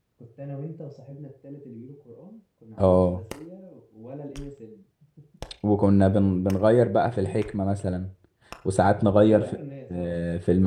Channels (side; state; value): both; identical; correlation 1.00